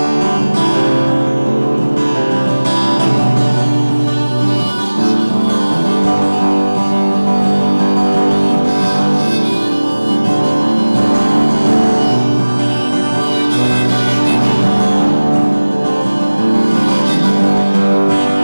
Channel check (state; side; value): inverted; both; correlation -1.00